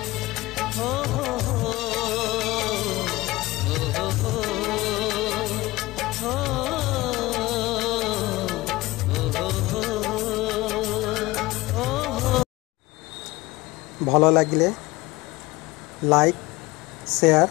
भल लगिले लाइक शेयर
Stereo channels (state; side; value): quieter; right; 19.8 dB